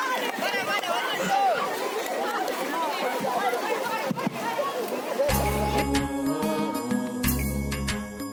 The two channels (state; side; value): identical; both; correlation 1.00